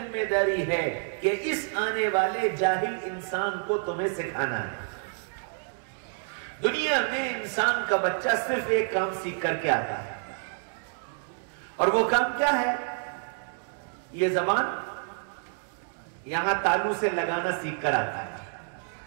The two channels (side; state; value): left; silent; digital silence